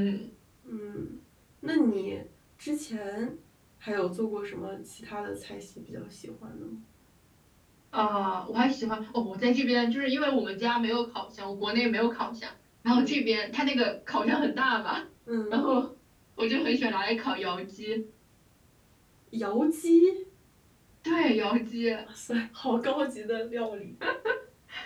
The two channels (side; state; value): both; identical; correlation 1.00